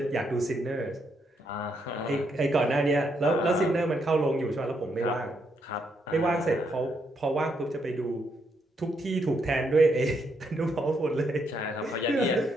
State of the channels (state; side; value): normal; both; correlation 0.77